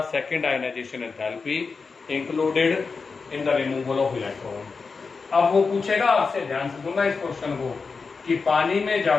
second ionization enthalpy included in the removal of electron। अब वो पूछेगा आपसे, ध्यान से सुनना इस क्वेश्चन को, कि पानी में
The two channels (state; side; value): quieter; right; 4.7 dB